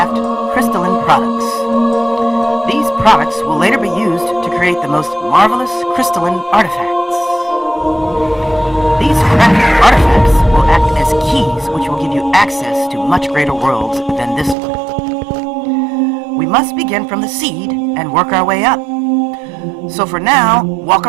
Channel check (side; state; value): left; drops out; at 14.6 s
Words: crystalline products. These products will later be used to create the most marvelous crystalline artifacts. These crafted artifacts will act as keys which will give you access to much greater worlds than this one. We must begin from the seed and work our way up. So for now, walk